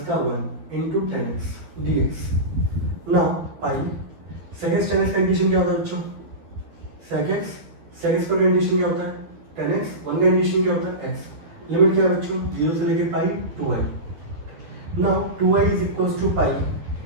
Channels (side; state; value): left; late; 12 ms